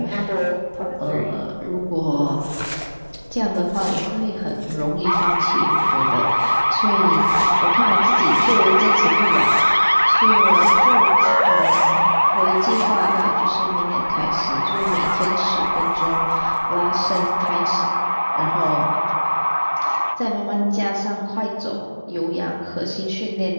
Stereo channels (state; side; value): inverted; both; correlation -1.00